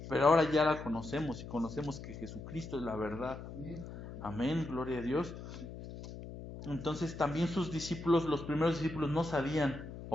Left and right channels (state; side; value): noise; left; hum, 11 dB below the sound